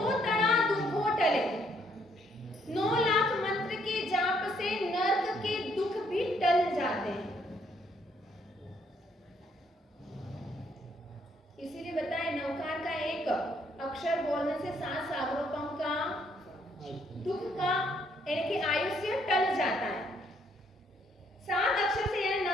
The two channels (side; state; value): both; normal; correlation 0.69